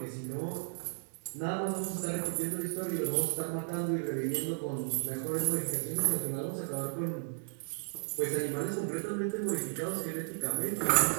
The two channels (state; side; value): silent; left; digital silence